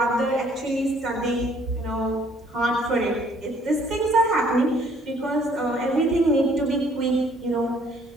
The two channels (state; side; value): normal; both; correlation 0.61